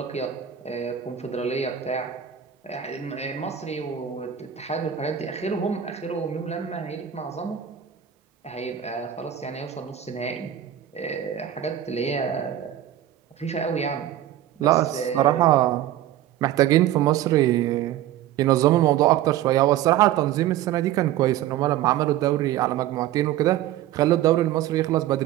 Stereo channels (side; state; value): left; quieter; 11.6 dB